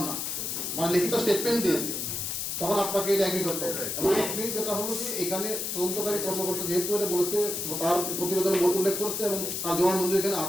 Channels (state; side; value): noise; left; hiss, 3 dB below the sound